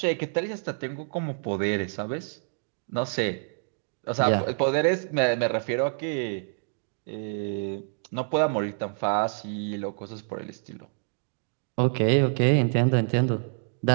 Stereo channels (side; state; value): left; silent; 60 dB below the other